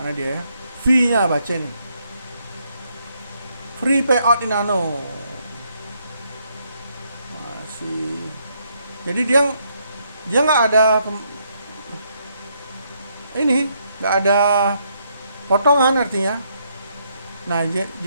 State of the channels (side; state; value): both; inverted; correlation -0.74